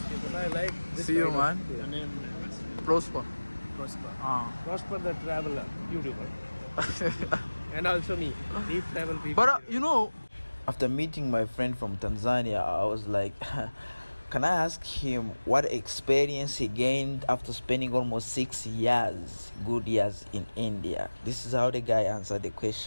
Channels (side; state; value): both; inverted; correlation -1.00